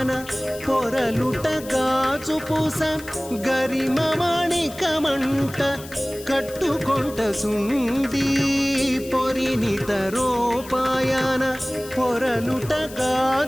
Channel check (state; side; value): noise; left; hiss, 17 dB below the sound